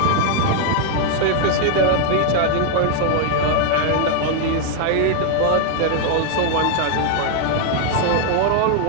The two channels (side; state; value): both; different; correlation 0.00